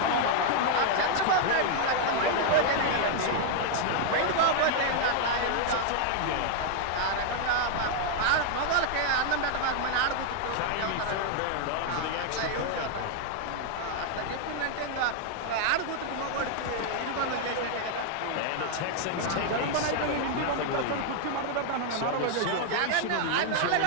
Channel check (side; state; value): both; different; correlation 0.00